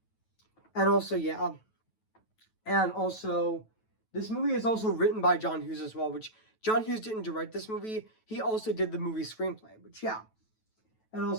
and also yeah, and also this movie is also written by John Hughes as well, which John Hughes didn't direct this movie. He also did the movie screenplay. Which yeah, and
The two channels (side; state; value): right; late; 9.2 ms